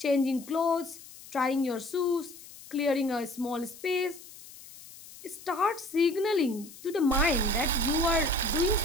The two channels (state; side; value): noise; left; hiss, 18 dB below the sound